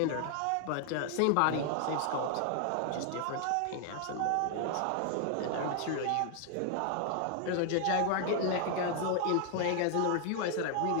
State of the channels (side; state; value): both; different; correlation 0.00